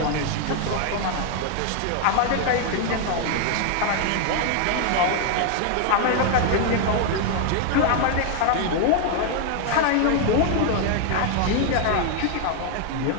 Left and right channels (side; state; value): both; different; correlation 0.00